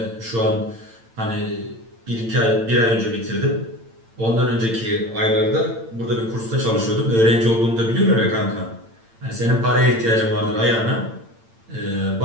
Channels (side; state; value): left; late; 8.8 ms